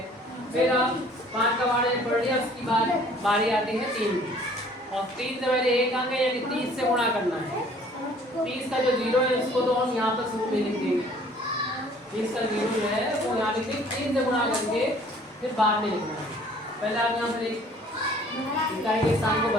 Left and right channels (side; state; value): both; normal; correlation 0.55